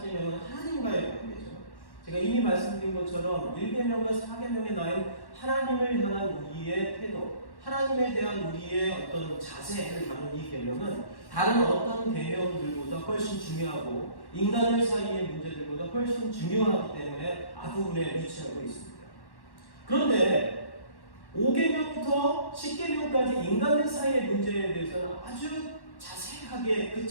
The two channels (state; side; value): late; right; 1.1 ms